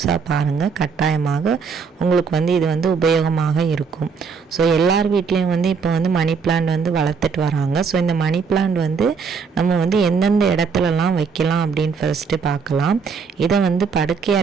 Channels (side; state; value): left; quieter; 5.6 dB